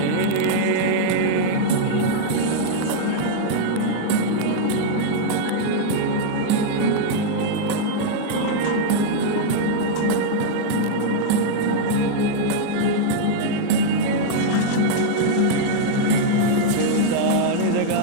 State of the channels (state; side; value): different; both; correlation -0.01